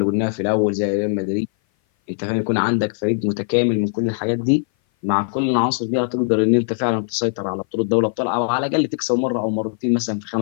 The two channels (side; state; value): right; silent; 58 dB below the other